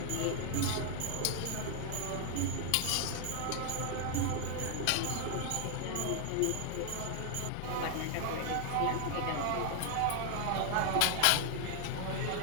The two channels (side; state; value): both; different; correlation 0.00